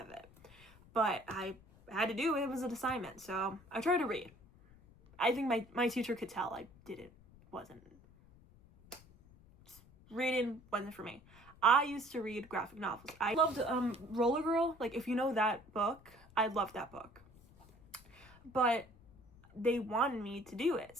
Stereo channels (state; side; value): noise; left; rumble, 24 dB below the sound